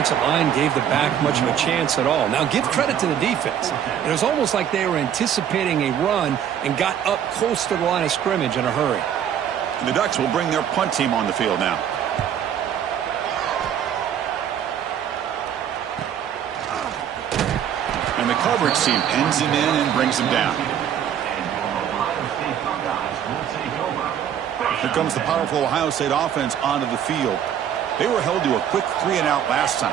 line gave the back much of a chance at all. Now, give credit to the defense. It was almost like they were anticipating a run and got up close to the line of scrimmage in a hurry. The Ducks will bring their punt team on the field now. And the coverage team pins him in and brings him down. Here comes the powerful Ohio State offense onto the field. They were held to a quick 3-and-out last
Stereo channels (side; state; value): left; quieter; 9.4 dB